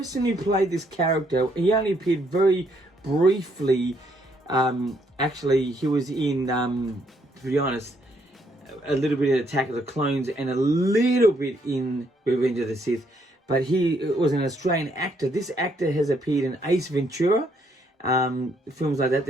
who played this character. He only appeared very briefly. Actually, he was in, to be honest, a little bit in Attack of the Clones and a little bit in Revenge of the Sith. But he was an Australian actor. This actor has appeared in Ace Ventura, films like that,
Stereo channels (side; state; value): both; normal; correlation 0.71